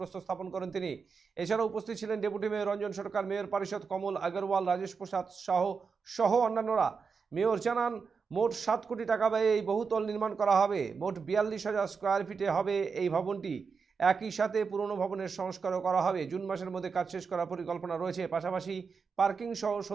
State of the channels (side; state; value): left; quieter; 5.4 dB